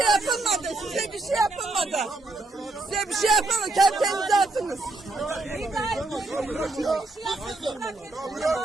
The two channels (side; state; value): left; quieter; 3.0 dB